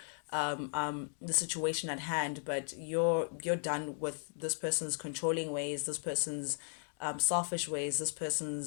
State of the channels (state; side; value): silent; right; 54 dB below the other